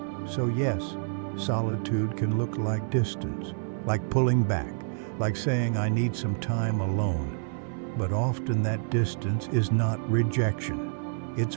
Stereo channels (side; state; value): left; silent; 59 dB below the other